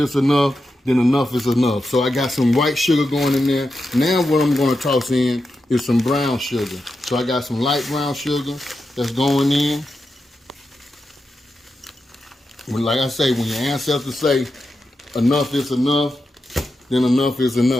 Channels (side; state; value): both; normal; correlation 0.88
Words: enough, then enough is enough. So I got some white sugar going in there. Now what I'm gonna toss in is some brown sugar. So I got some light brown sugar that's going in. Like I say, when your ancestors say enough is enough, then enough is